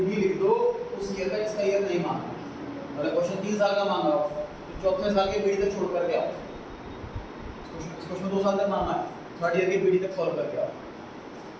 भी लिख दो, उस ईयर का इसका ईयर नहीं मांगना। अगर क्वेश्चन 3 साल का मांगा हो तो चौथे साल के बीडी तक छोड़ करके आओ। इस क्वेश्चन 2 साल तक मांगा है, 3rd ईयर के बीडी तक सॉल्व करके आओ।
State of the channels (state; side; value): identical; both; correlation 1.00